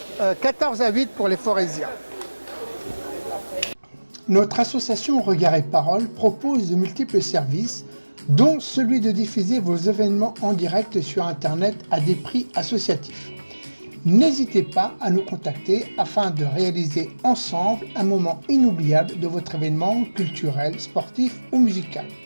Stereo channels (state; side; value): inverted; both; correlation -1.00